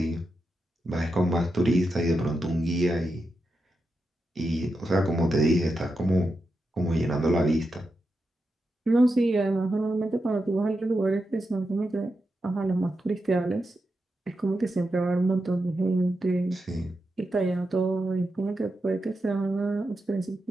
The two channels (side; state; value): both; normal; correlation 0.87